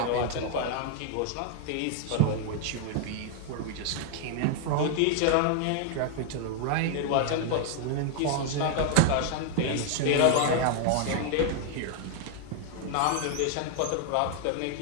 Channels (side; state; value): both; different; correlation 0.00